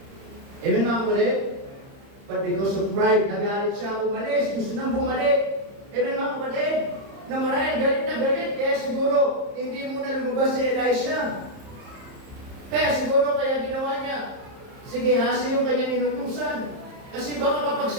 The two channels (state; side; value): late; left; 30 ms